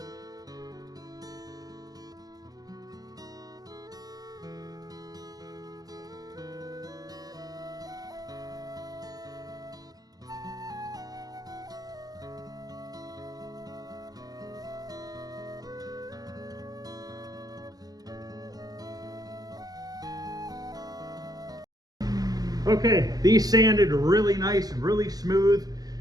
Okay, these sanded really nice, really smooth.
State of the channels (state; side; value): late; left; 0.18 ms